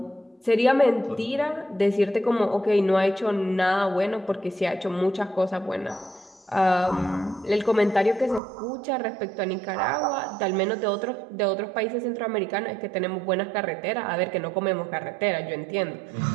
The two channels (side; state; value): left; drops out; at 8.4 s